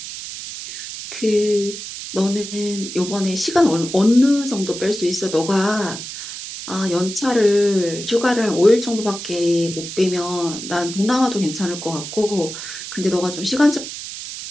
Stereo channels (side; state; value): right; noise; hiss, 9 dB below the sound